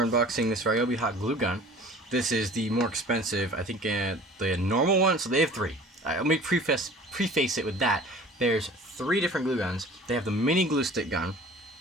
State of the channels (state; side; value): normal; both; correlation 0.45